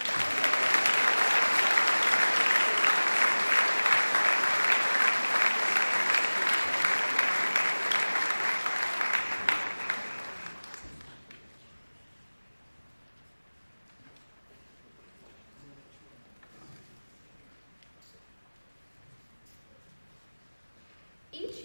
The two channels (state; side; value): inverted; both; correlation -1.00